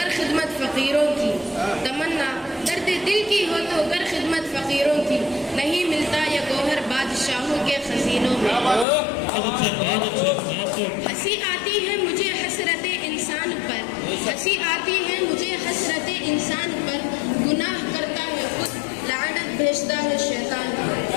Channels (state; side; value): drops out; right; at 8.8 s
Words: खिदमत फकीरों की, तमन्ना दर्द दिल की हो तो कर खिदमत फकीरों की, नहीं मिलता ये गौहर बादशाहों के खजीनों में। हंसी आती है मुझे हसरत इंसान पर, हंसी आती है मुझे हसरत इंसान पर, गुनाह करता है खुद लानत भेजता है शैतान पर।